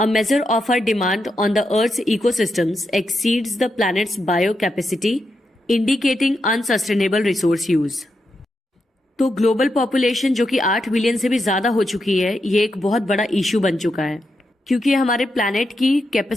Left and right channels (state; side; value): normal; both; correlation 0.85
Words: measure of our demand on the Earth's ecosystems, exceeds the planet's biocapacity indicating unsustainable resource use. तो ग्लोबल पॉपुलेशन जो कि 8 billion से भी ज्यादा हो चुकी है, ये एक बहुत बड़ा इशू बन चुका है क्योंकि हमारे प्लैनेट की